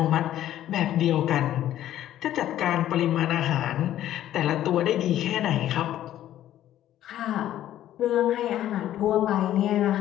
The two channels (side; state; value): right; quieter; 12.4 dB